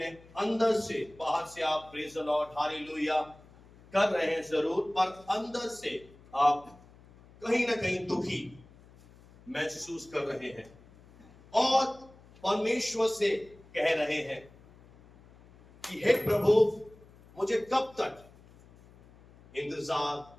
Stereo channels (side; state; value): left; noise; hum, 24 dB below the sound